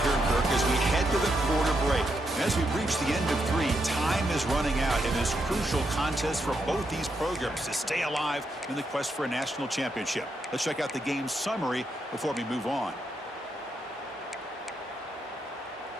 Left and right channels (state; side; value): normal; both; correlation 0.81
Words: Kirk, as we head to the quarter break. And as we reach the end of three, time is running out in this crucial contest for both these programs to stay alive in the quest for a national championship. Let's check out the game summary before we move on.